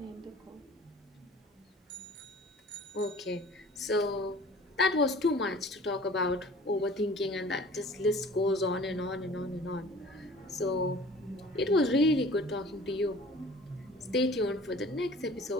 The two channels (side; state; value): both; normal; correlation 0.47